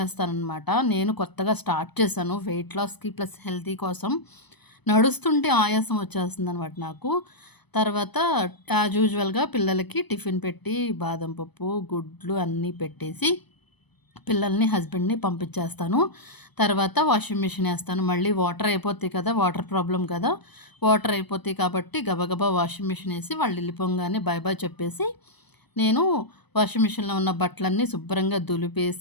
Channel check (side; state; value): right; late; 0.99 ms